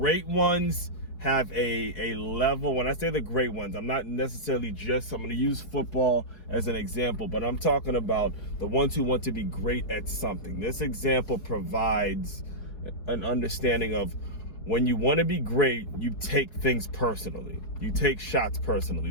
ones have a level. When I say the great ones, I'm not necessarily I'm going to use football as an example, but I'm talking about the ones who want to be great at something. This example provides an understanding of when you want to be great, you take things personally. You take shots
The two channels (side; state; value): right; late; 4.7 ms